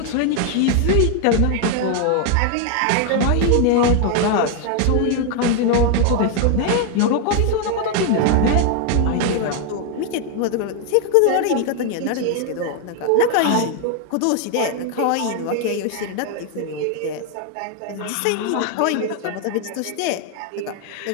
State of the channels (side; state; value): both; different; correlation 0.00